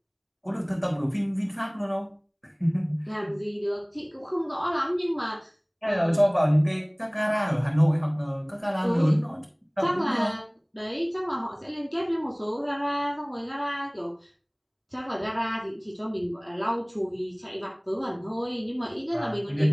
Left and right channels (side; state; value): both; identical; correlation 1.00